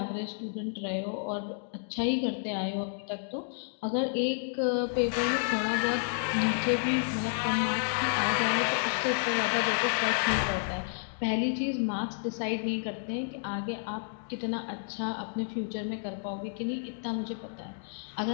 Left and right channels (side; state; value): right; silent; digital silence